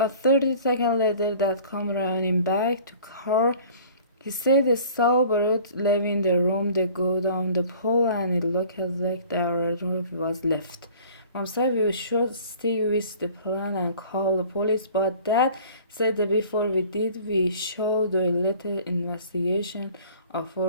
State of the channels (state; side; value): inverted; both; correlation -0.48